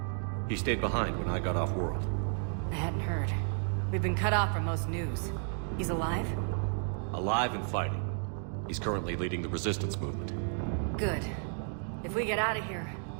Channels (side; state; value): left; silent; 56 dB below the other